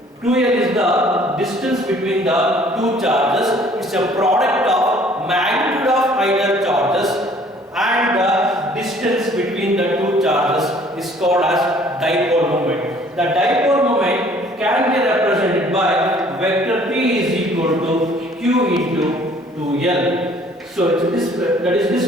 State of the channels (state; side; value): normal; both; correlation 0.56